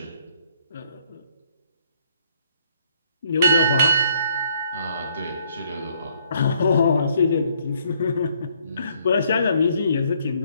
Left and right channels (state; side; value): inverted; both; correlation -0.67